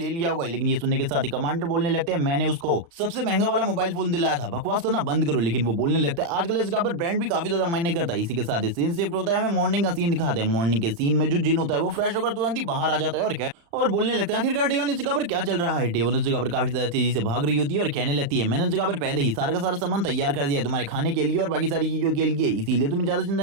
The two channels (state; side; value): late; left; 35 ms